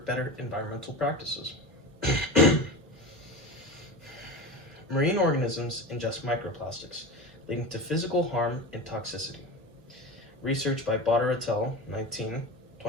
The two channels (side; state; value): both; normal; correlation 0.28